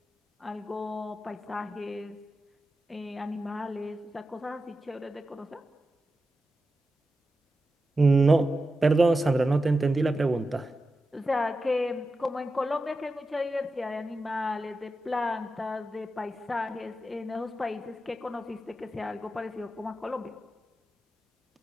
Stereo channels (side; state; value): both; normal; correlation 0.91